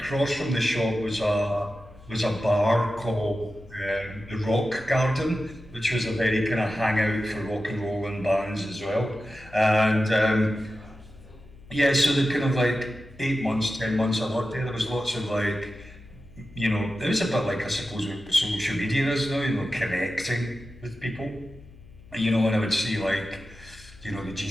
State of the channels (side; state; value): left; noise; hum, 21 dB below the sound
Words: from the shop was a bar called the Rock Garden, which was a very kind of hangout for rock and roll and bands as well. And yeah, so the kind of like 8 months, 10 months I worked there, there was lots of like, you know, it was a bit like I suppose what social media is now, you know, connecting with people. You know, and I would see like, you know, the